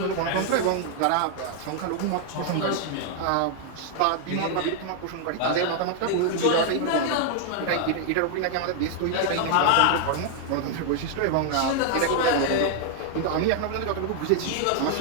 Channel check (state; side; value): different; both; correlation 0.00